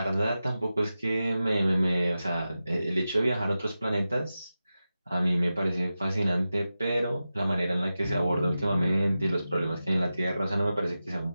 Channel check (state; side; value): inverted; both; correlation -0.93